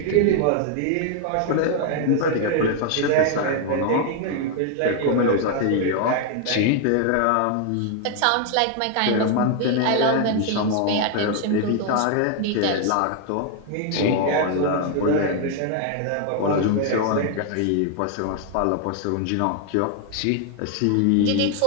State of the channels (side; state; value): both; different; correlation 0.00